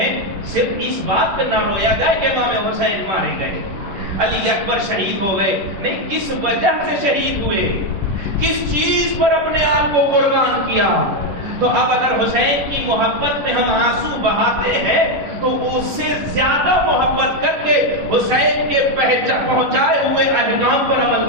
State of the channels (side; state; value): left; late; 11 ms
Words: صرف اس بات پہ نہ رویا جائے کہ امام حسین مارے گئے، علی اکبر شہید ہو گئے، نہیں، کس وجہ سے شہید ہوئے، کس چیز پر اپنے آپ کو قربان کیا۔ تو اب اگر حسین کی محبت میں ہم آنسو بہاتے ہیں تو اس سے زیادہ محبت کر کے حسین کے پہنچائے ہوئے احکام پر عمل